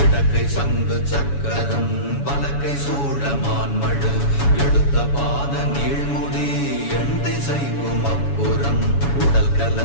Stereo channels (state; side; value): late; right; 7.1 ms